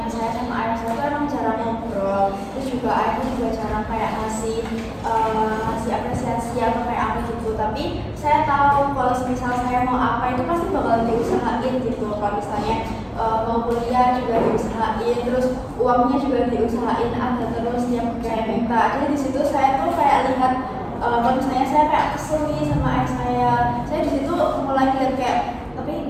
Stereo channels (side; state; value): both; identical; correlation 1.00